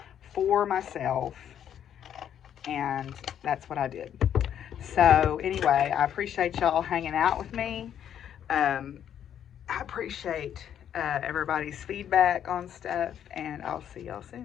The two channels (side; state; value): right; quieter; 9.6 dB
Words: for myself. And that's what I did. So anyway, I appreciate y'all hanging out with me. I appreciate everybody's feedback on stuff, and I'll see y'all